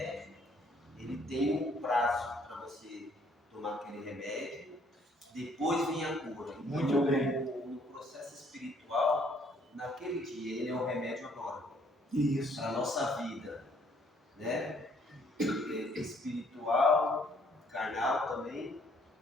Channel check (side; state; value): both; normal; correlation 0.64